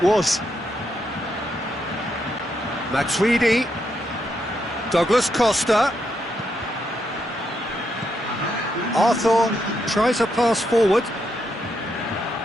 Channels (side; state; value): both; normal; correlation 0.80